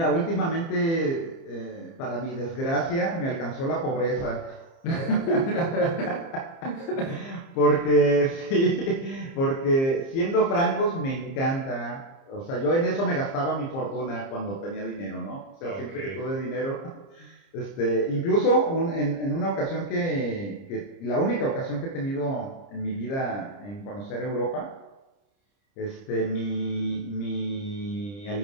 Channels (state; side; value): late; right; 30 ms